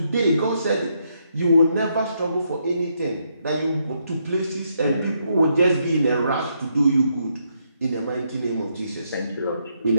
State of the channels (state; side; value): inverted; both; correlation -0.77